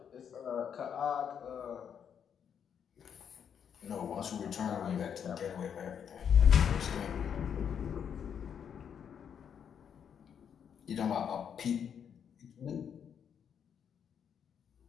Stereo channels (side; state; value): right; quieter; 8.0 dB